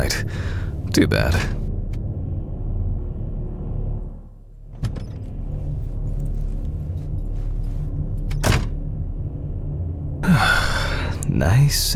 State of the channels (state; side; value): identical; both; correlation 1.00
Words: Too bad. Nice